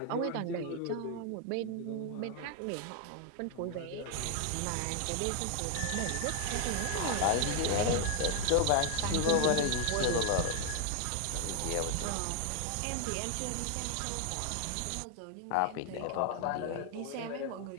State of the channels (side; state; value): both; different; correlation 0.01